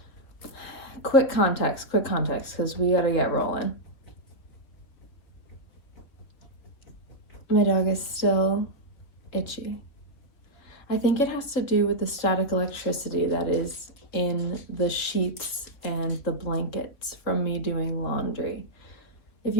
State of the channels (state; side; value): late; right; 3.5 ms